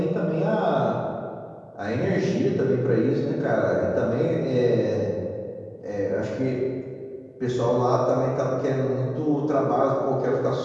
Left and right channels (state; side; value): identical; both; correlation 1.00